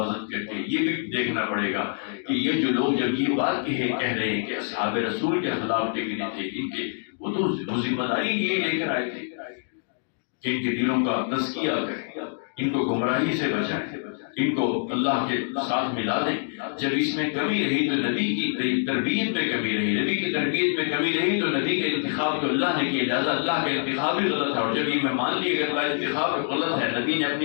کر کے یہ بھی دیکھنا پڑے گا کہ یہ جو لوگ جب یہ بات کہہ رہے ہیں کہ اصحاب رسول کے خلاف ٹکنے تھے ان کے، وہ تو ذمہ داری یہی لے کر آئے تھے کہ ان کے دلوں کا تزکیہ کریں، ان کو گمراہی سے بچائیں، ان کو اللہ کے ساتھ ملا دیں۔ جب اس میں کمی رہی تو نبی کی تربیت میں کمی رہی، نبی کی تربیت میں کمی رہی تو نبی کا انتخاب تو اللہ نے کیا، لہٰذا اللہ کا انتخاب بھی غلط ہے، اور جب یہ میں مان لیے کہ اللہ کا انتخاب غلط ہے، نبی نے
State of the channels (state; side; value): silent; right; digital silence